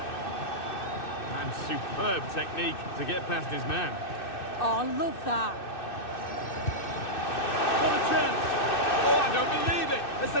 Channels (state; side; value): late; right; 2.6 ms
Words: Superb technique to get past his man. Oh, I love that. What a chance! Oh, I don't believe it! A